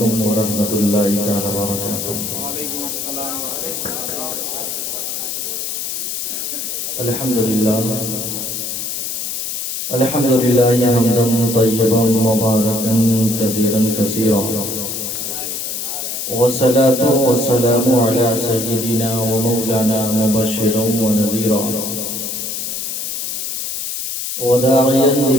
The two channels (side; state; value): left; noise; hiss, 4 dB below the sound